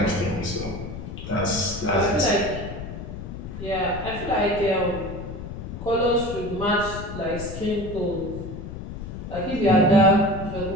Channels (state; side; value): noise; left; rumble, 9 dB below the sound